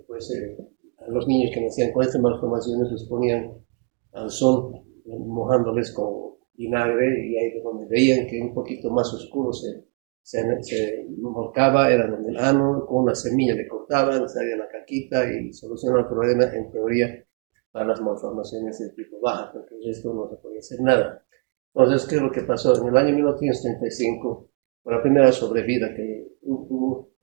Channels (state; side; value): quieter; left; 34.3 dB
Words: pues, a los niños que nacían con estas malformaciones los ponían al sol, mojándoles con vinagre, y ahí donde veían que un poquito más oscuro se volcaba, era donde el ano, con una semilla le cortaban, salía la caquita y solucionaba el problema en teoría para las malformaciones de tipo baja, porque el resto no se podía hacer nada. Entonces, ¿qué es lo que pasó? En el año 1935, por la primera sobrevida que hubo,